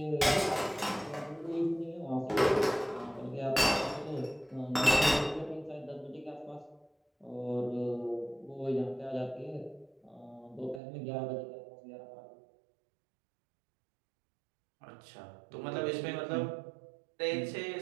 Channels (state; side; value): drops out; left; at 10.8 s